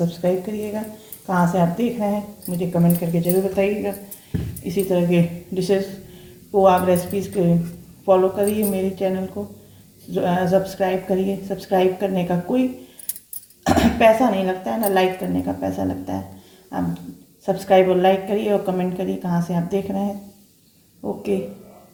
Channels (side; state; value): both; identical; correlation 1.00